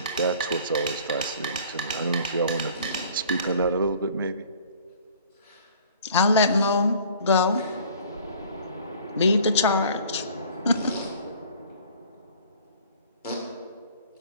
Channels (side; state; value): both; inverted; correlation -0.50